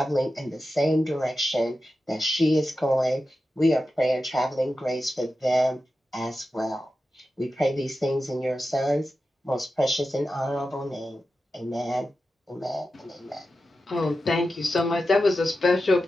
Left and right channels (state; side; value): normal; both; correlation 0.91